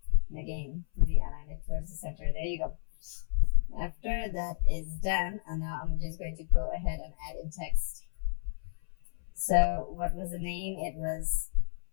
And again, realign it towards the center. There you go. After that is done, and now I'm just going to go ahead and add in text. So what was the name? It was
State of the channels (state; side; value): silent; right; 57 dB below the other